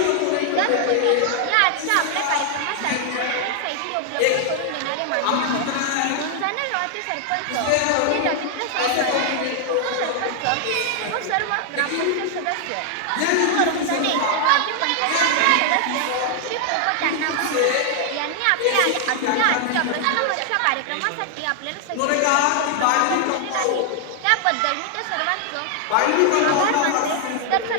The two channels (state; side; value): different; both; correlation 0.00